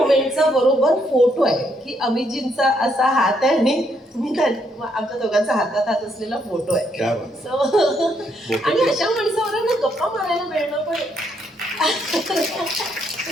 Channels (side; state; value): both; normal; correlation 0.74